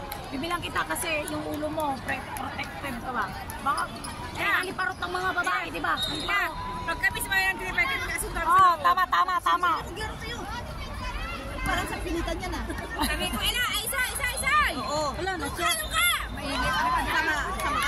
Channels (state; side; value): identical; both; correlation 1.00